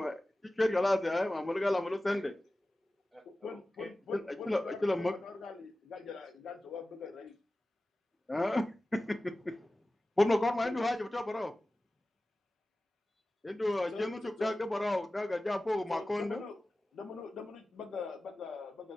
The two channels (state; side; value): normal; both; correlation 0.96